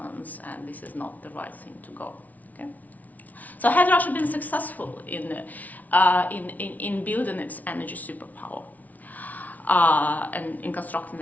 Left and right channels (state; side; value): late; right; 0.074 ms